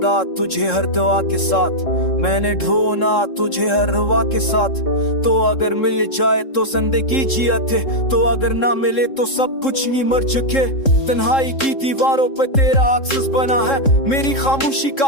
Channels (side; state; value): right; late; 3.7 ms